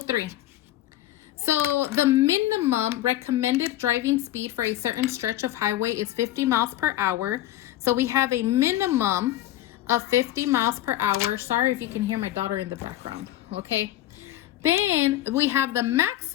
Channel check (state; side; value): quieter; right; 14.0 dB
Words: So the minimum recommended driving speed for a certain stretch of highway is 50 miles per hour. So we have a minimum of 50 miles per hour. Sorry if you can hear my daughter in the background, okay? Then we have the